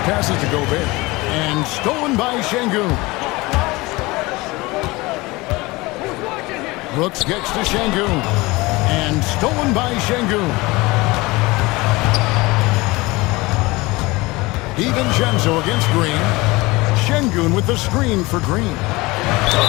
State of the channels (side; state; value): right; quieter; 22.3 dB